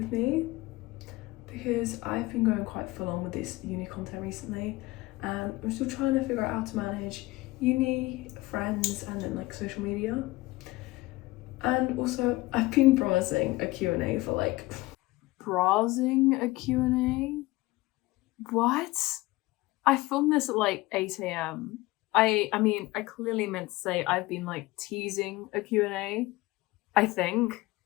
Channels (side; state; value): right; quieter; 20.1 dB